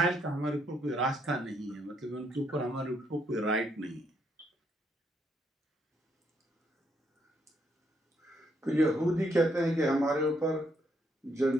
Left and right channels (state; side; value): normal; both; correlation 0.74